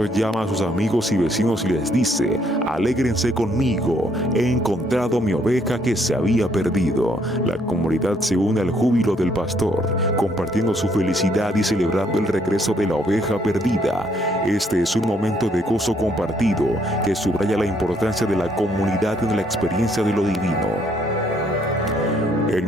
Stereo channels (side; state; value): both; normal; correlation 0.69